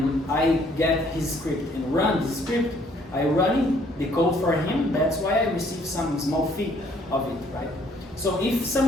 I get his script and run the script, I run the code for him. That's why I receive some small fee of it, right? So if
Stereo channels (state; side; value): normal; both; correlation 0.63